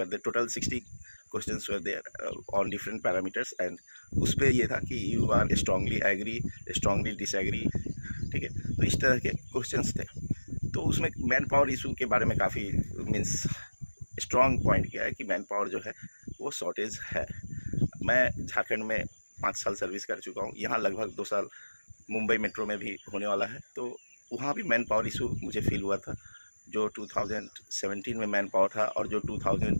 there, total 60 questions were there on different parameters. And उस पर ये था कि you are strongly agree, strongly disagree, ठीक है। तो इस तरह के क्वेश्चंस थे। तो उसमें मैन पावर इशू के बारे में काफ़ी मीन्स स्ट्रॉन्ग पॉइंट किया है कि मैन पावर जो है वो शॉर्टेज है। मैं झारखंड में 5 साल सर्विस कर चुका हूँ, यहाँ लगभग 2 साल मुंबई मेट्रो में भी होने वाला है। तो वहाँ भी मैन पावर इशू मुझे फील हुआ था। जो 2017 में मैन पावर था और जो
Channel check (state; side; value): inverted; both; correlation -1.00